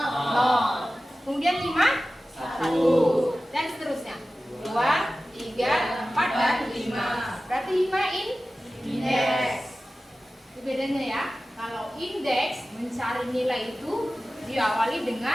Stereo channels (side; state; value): both; normal; correlation 0.96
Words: Kemudian 5, 1. Dan seterusnya. 2, 3, 4, dan 5. Berarti 5 indeks. Itu bedanya ya. Kalau indeks mencari nilai itu diawali